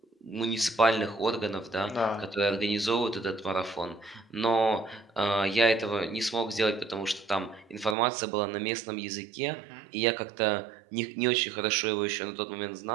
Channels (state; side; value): drops out; left; at 8.0 s